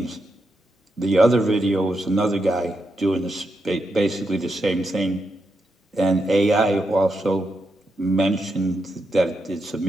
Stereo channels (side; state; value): both; normal; correlation 0.84